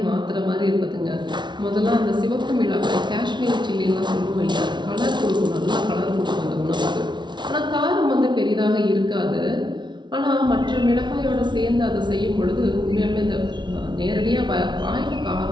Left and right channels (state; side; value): late; left; 0.22 ms